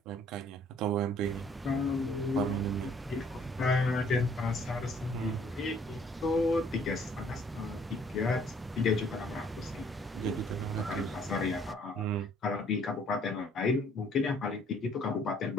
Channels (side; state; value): both; normal; correlation 0.61